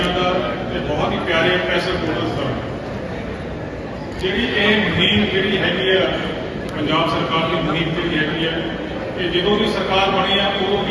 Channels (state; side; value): identical; both; correlation 1.00